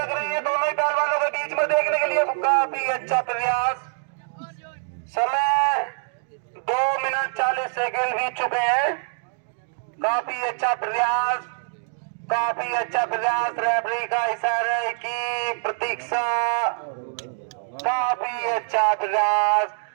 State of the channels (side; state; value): left; silent; 62 dB below the other